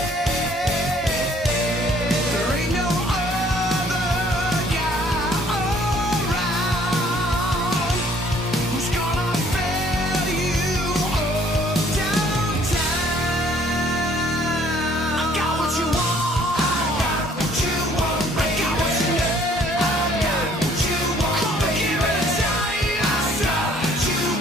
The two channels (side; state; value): both; normal; correlation 0.60